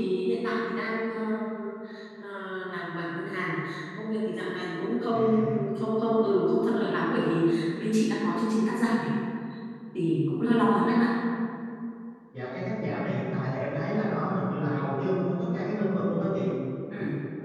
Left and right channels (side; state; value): both; identical; correlation 1.00